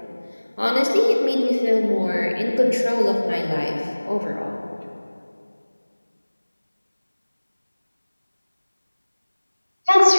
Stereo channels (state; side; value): inverted; both; correlation -1.00